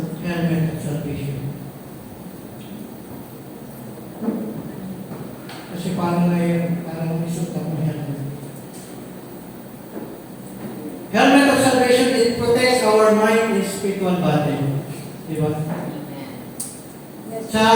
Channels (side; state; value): both; identical; correlation 1.00